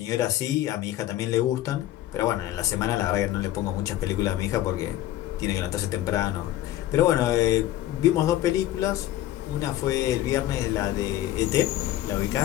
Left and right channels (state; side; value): quieter; right; 14.0 dB